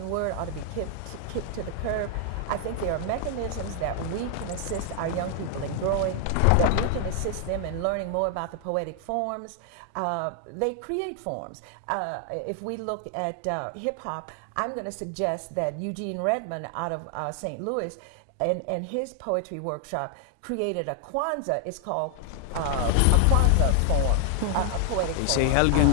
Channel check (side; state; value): both; different; correlation 0.00